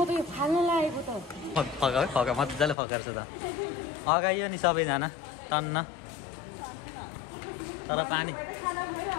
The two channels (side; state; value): right; drops out; at 2.8 s